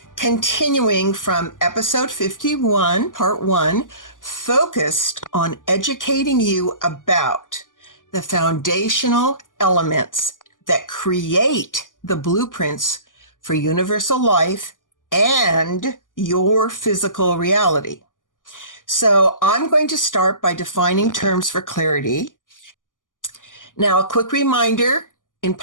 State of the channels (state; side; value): late; right; 0.88 ms